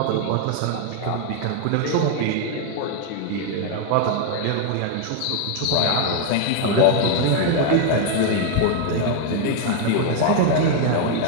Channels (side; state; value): both; different; correlation 0.01